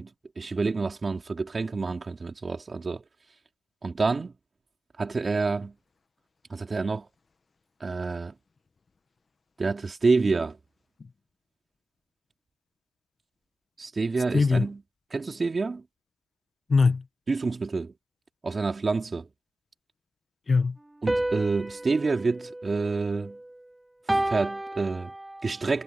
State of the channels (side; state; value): both; normal; correlation 0.94